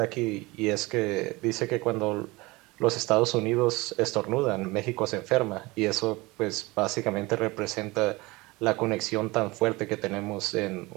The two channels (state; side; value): quieter; left; 22.6 dB